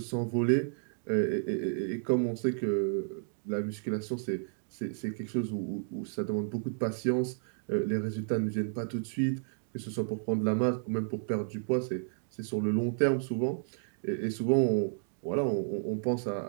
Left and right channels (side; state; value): left; silent; digital silence